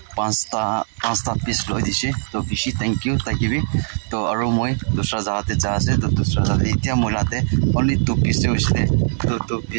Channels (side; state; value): left; silent; 65 dB below the other